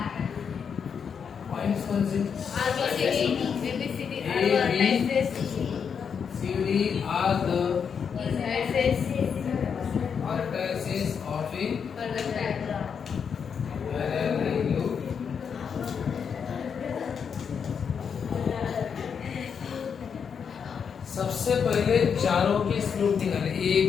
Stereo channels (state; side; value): quieter; right; 6.8 dB